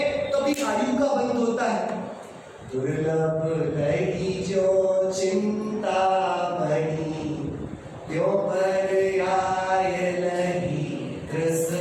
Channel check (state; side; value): identical; both; correlation 1.00